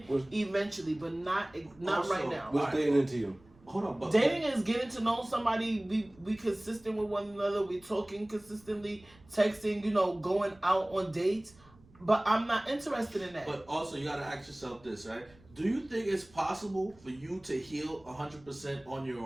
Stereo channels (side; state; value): right; noise; rumble, 27 dB below the sound